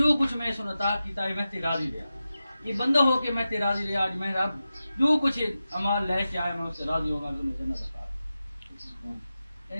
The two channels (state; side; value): inverted; both; correlation -0.93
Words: کچھ میں اس عطا کیتا ہے میں تے راضی رہا. یہ بندہ ہو کے میں تے راضی رہا. آج میں رب جو کچھ عمال لے کے آئے میں اس سے راضی ہوگا کہ میں جنت عطا.